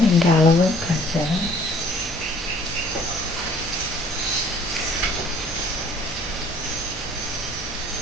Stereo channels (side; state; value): both; normal; correlation 0.55